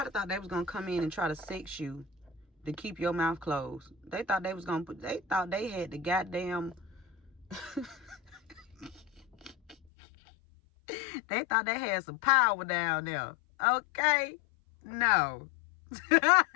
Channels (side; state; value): right; drops out; at 9.8 s